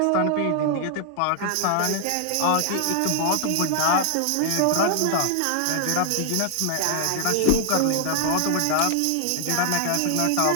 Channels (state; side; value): different; both; correlation 0.00